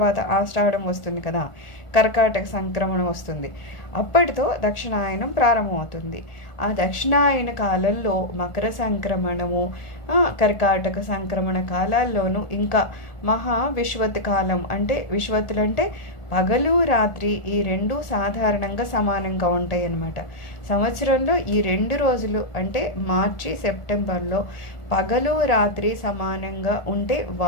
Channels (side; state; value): right; late; 1.4 ms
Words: ఆషాఢం వస్తుంది కదా, కర్కాటక సంక్రమణం వస్తుంది. అప్పటితో దక్షిణాయనం ప్రారంభమవుతుంది. ఆ దక్షిణాయన కాలంలో మకర సంక్రమణము, కర్కాటక సంక్రమణ కాలాల్లోనూ ఇంకా మహా విశ్వత్ కాలం అంటే విశ్వత్తులంటే పగలు రాత్రి ఈ 2 సాధారణంగా సమానంగా ఉంటాయి అన్నమాట. సంవత్సరంలో ఈ 2 రోజులు అంటే మార్చి సెప్టెంబర్లో పగలు రాత్రి సమానంగా ఉంటే